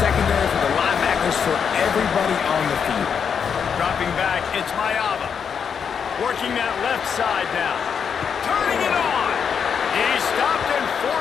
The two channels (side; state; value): right; quieter; 7.0 dB